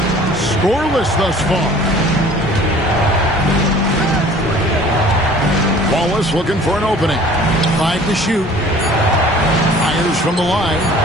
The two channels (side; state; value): both; normal; correlation 0.49